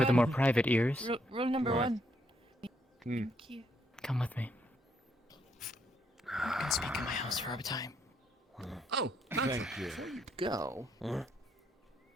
the more private ears. Rule number What? 1. Hmm. Thank you. Come with me. You can speak in my house for a time. Oh, Thank you. Before you go,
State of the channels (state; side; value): normal; both; correlation 0.74